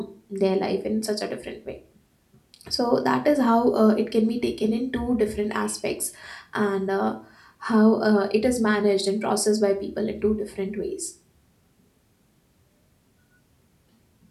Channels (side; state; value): both; identical; correlation 1.00